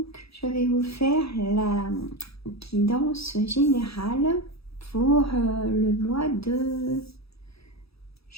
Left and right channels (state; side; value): late; right; 0.77 ms